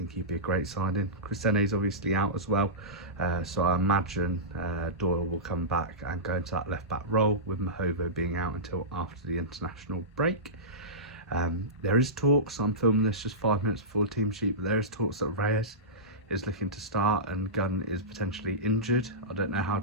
he'd be a great signing. Chrisene's obviously out as well, so I imagine Doyle will come back and go into that left back role, with Mahovo being out until after the international break. There is talks, I'm filming this just 5 minutes before the team sheet, but there is talks that Reyes is looking to start and Gunn is potentially injured. I don't know how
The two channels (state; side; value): normal; both; correlation -0.18